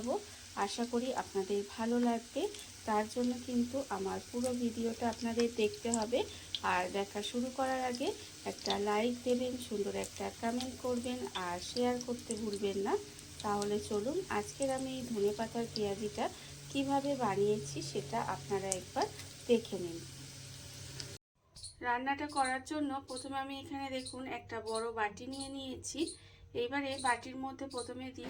আশা করি আপনাদের ভালো লাগবে। তার জন্য কিন্তু আমার পুরো ভিডিওটা আপনাদের দেখতে হবে। আর দেখা শুরু করার আগে একটা লাইক দেবেন, সুন্দর একটা কমেন্ট করবেন আর শেয়ার করতে ভুলবেন না। তাহলে চলুন আজকের আমি এই ধনেপাতার পেঁয়াজিটা কিভাবে বানিয়েছি সেটা আপনারা একবার দেখে নিন। রান্নাটা করার জন্য প্রথমে আমি এখানে দেখুন একটা বড় বাটি নিয়ে নিয়েছি। এইবারে বাটির মধ্যে প্রথমে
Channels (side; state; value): both; identical; correlation 1.00